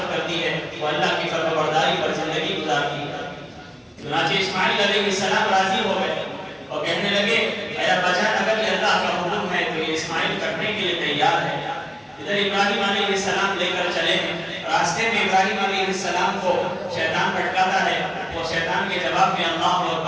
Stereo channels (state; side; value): identical; both; correlation 1.00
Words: کرتی ہے، وہ اللہ کی فرمانبرداری پر زندگی گزارتی ہے۔ چنانچہ اسماعیل علیہ السلام راضی ہو گئے اور کہنے لگے اے ابا جان اگر یہ اللہ کا حکم ہے تو یہ اسماعیل کرنے کے لیے تیار ہے۔ ادھر ابراہیم علیہ السلام لے کر چلے ہیں، راستے میں ابراہیم علیہ السلام کو شیطان بھٹکاتا ہے، وہ شیطان کے جواب میں اللہ